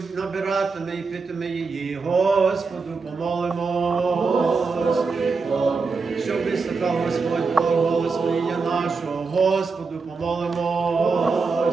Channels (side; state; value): left; quieter; 4.5 dB